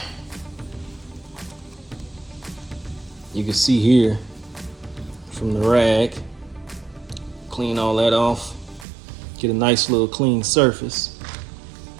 You can see here from the rag, clean all that off, get a nice little clean surface.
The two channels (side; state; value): left; drops out; at 8.8 s